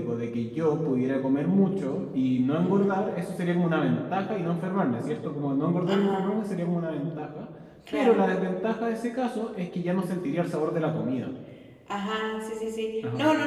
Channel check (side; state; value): both; identical; correlation 1.00